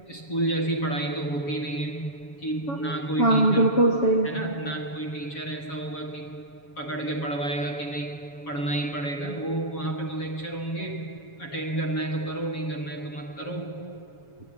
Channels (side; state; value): right; late; 7.2 ms